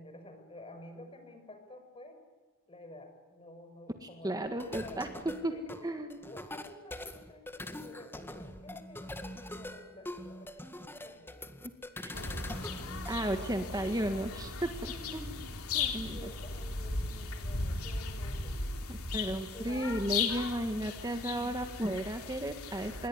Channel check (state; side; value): normal; both; correlation 0.62